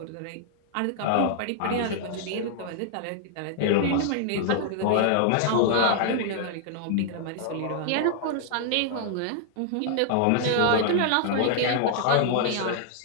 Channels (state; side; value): different; both; correlation -0.01